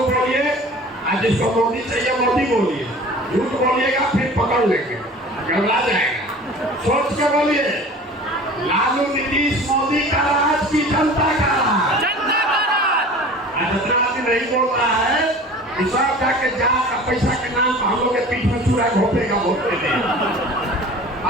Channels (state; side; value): normal; both; correlation 0.42